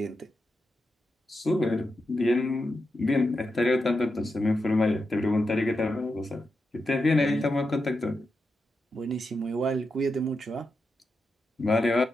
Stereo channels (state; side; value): normal; both; correlation 0.87